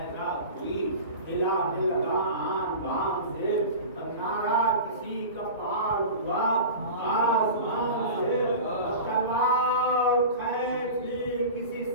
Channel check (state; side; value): inverted; both; correlation -0.33